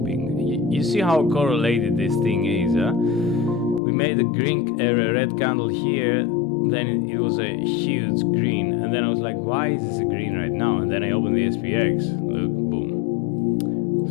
You see how correlated this thing is, huh? We made a red candle here. then it was a huge green, and then I was like, why is this a green right now? And then I opened the SPX. Look, boom.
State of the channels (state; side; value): drops out; right; at 3.8 s